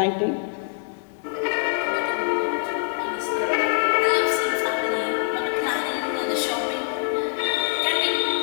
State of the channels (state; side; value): silent; right; digital silence